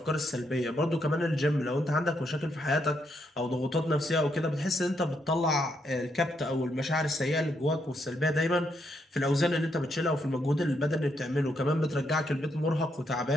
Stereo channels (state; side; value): normal; both; correlation 0.77